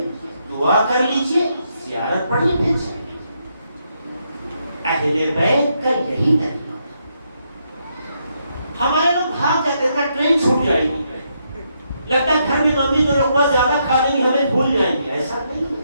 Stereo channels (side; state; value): both; inverted; correlation -0.78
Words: دعا کر لیجئے، زیارت پڑھیے، پھر چلیے. اہل بیت کا یہی طریقہ. ہمارے لوگ بھاگ جاتے ہیں، ٹرین چھوٹ جائے گی، لگتا ہے گھر میں ممی تو لقمہ زیادہ کھا لیں گی، ہمیں بھول جائیں گے. ایسا نہیں ہے.